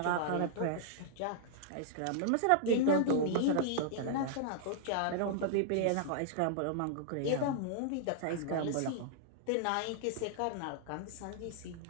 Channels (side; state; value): both; different; correlation -0.01